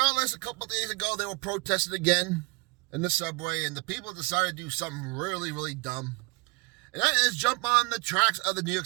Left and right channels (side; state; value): left; quieter; 26.8 dB